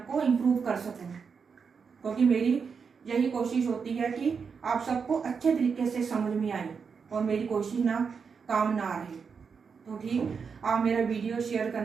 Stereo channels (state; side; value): quieter; left; 5.9 dB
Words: को इम्प्रूव कर सकूं। क्योंकि मेरी यही कोशिश होती है कि आप सबको अच्छे तरीके से समझ में आए और मेरी कोशिश ना काम ना रहे। तो ठीक, आप मेरा वीडियो शेयर